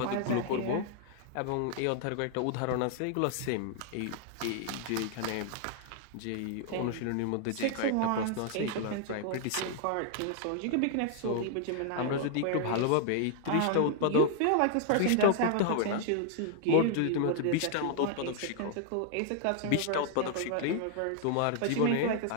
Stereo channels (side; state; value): both; different; correlation 0.00